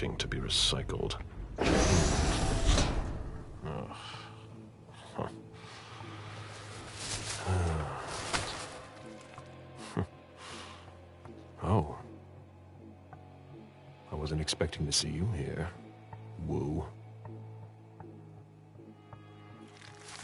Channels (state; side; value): identical; both; correlation 1.00